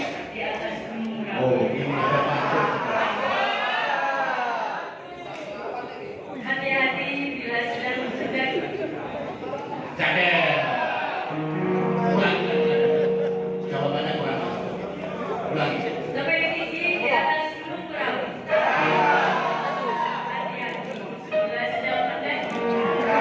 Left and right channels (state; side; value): identical; both; correlation 1.00